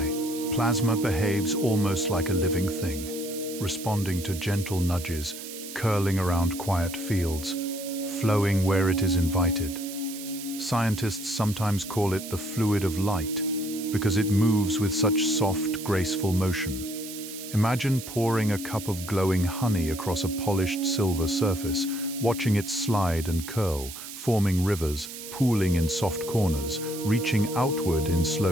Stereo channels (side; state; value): right; noise; hiss, 11 dB below the sound